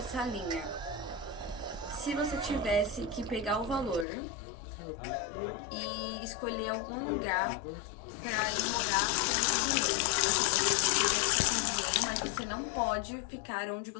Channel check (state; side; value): drops out; right; at 4.0 s